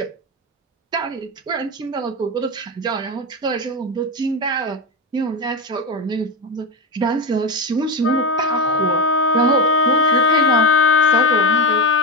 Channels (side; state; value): both; normal; correlation 0.15